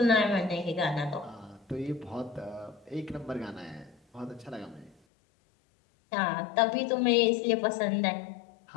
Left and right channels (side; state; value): right; drops out; at 5.0 s